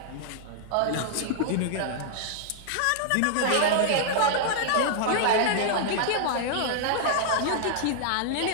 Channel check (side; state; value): both; different; correlation -0.01